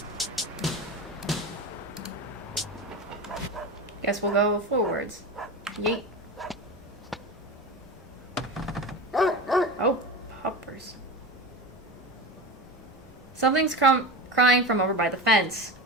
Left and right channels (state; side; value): normal; both; correlation 0.26